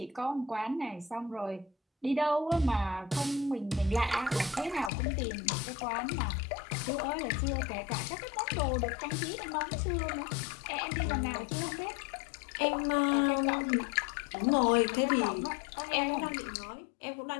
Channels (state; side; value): drops out; right; at 4.9 s